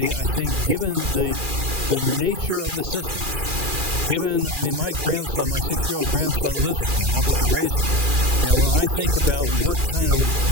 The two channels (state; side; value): late; left; 2.4 ms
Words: I think given the nature of the systems, my grandson, my 6-year-old grandson lives with me. I'm helping to raise him. When I think about what kind